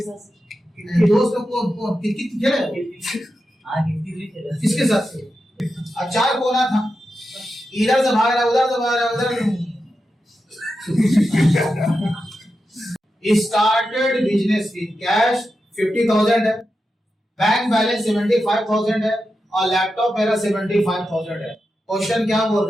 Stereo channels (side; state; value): both; normal; correlation 0.89